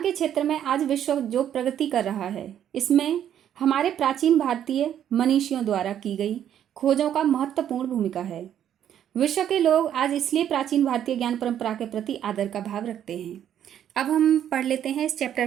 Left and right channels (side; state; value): left; quieter; 10.1 dB